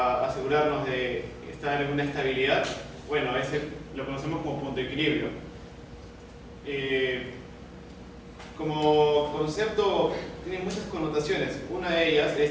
asegurarnos de estar en una estabilidad? Bueno, ese lo conocemos como punto de equilibrio. Como concepto tiene muchas connotaciones. Una de ellas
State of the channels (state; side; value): identical; both; correlation 1.00